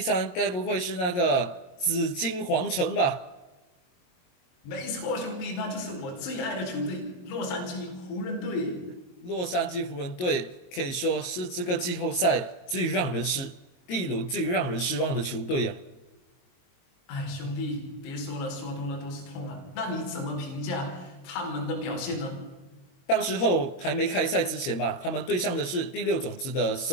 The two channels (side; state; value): right; late; 22 ms